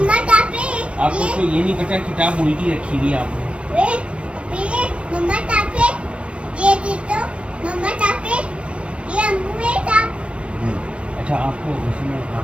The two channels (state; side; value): late; left; 0.059 ms